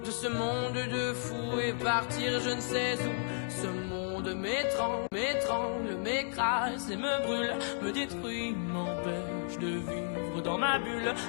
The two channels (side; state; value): right; silent; digital silence